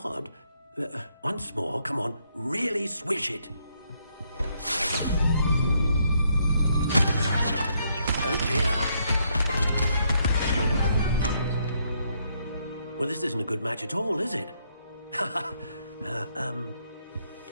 Once more, come on, really swish it. Oh dear. Well, this isn't a good match at all, is it?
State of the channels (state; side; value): inverted; both; correlation -0.74